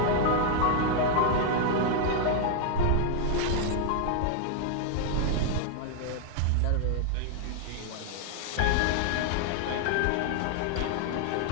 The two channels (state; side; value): different; both; correlation 0.00